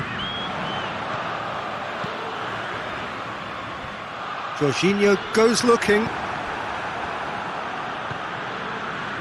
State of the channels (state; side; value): identical; both; correlation 1.00